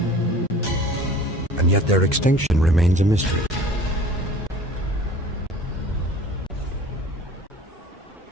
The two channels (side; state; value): both; normal; correlation 0.46